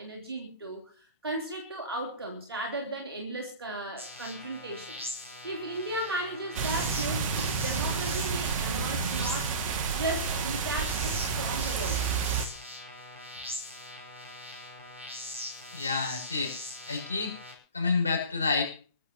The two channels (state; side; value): inverted; both; correlation -0.33